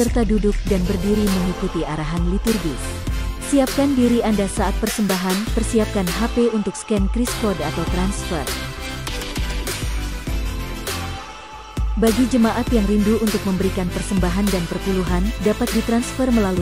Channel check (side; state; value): both; identical; correlation 1.00